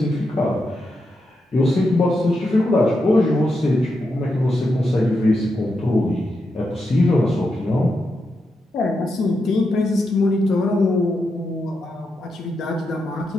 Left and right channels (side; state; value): both; normal; correlation 0.85